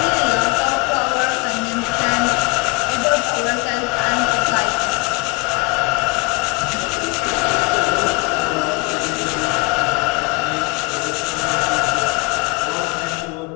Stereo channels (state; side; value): quieter; right; 27.5 dB